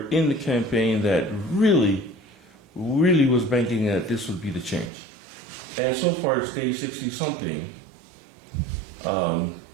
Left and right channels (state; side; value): drops out; left; at 4.9 s